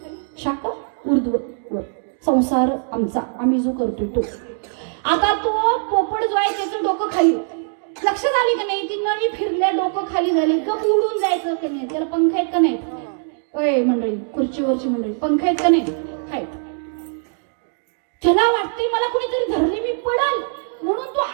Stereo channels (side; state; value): left; silent; digital silence